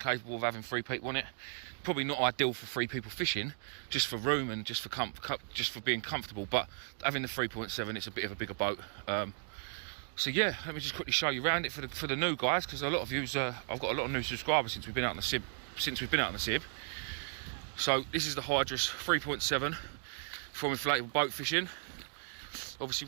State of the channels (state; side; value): silent; left; digital silence